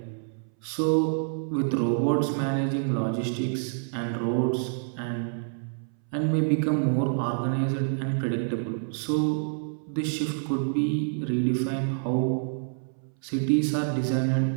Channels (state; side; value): silent; left; 60 dB below the other